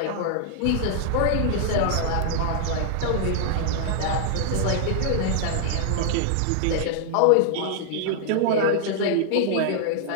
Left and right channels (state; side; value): different; both; correlation -0.01